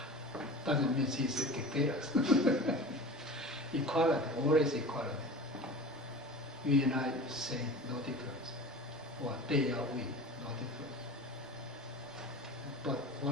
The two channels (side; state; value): both; normal; correlation 0.35